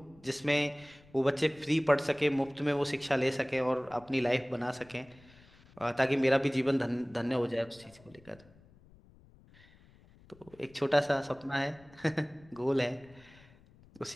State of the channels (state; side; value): noise; left; rumble, 26 dB below the sound